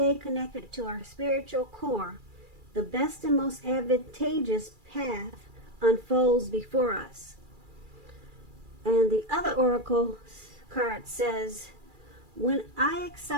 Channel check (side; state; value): left; late; 2.3 ms